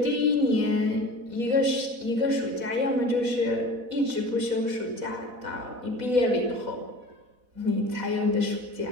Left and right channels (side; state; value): left; late; 4.1 ms